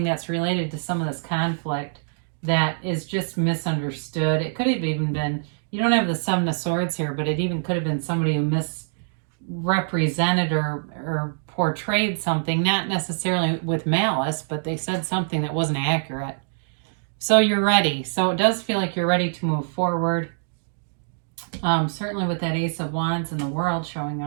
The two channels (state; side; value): silent; left; digital silence